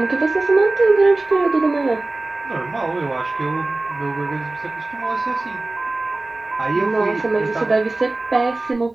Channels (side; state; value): left; quieter; 3.0 dB